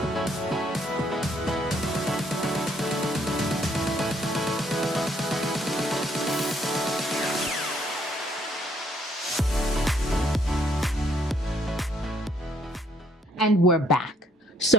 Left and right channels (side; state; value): both; normal; correlation 0.68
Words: And we're back.